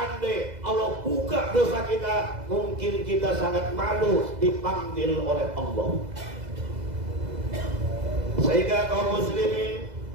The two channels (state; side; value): late; left; 2.0 ms